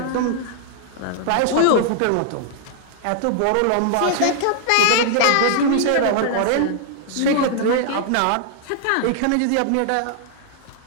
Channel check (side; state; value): both; different; correlation -0.01